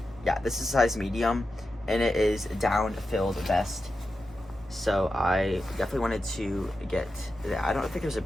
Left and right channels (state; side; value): normal; both; correlation 0.91